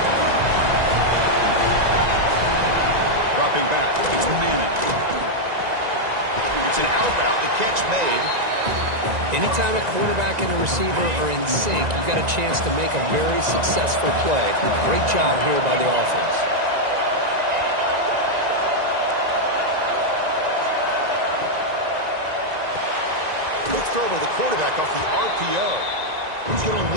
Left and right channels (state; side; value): late; left; 1.9 ms